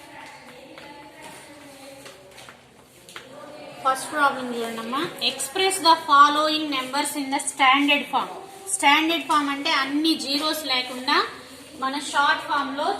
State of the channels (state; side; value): identical; both; correlation 1.00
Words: First problem చూడండమ్మా. Express the following numbers in the standard form. Standard form అంటే అన్ని zeros లేకుండా మన షార్ట్ ఫామ్ లో